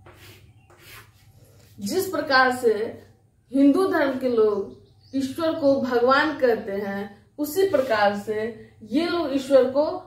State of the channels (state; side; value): identical; both; correlation 1.00